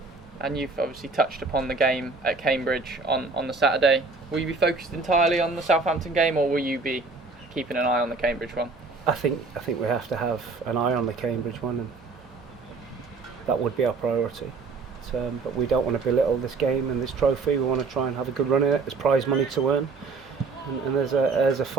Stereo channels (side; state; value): left; quieter; 4.0 dB